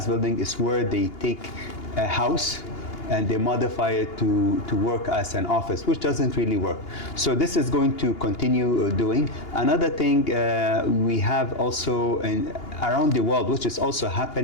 building is where they take a house and they modify it to work as an office, which doesn't really work. So this is going to continue doing. Another thing we have also around the world, which is also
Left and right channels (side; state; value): right; late; 2.8 ms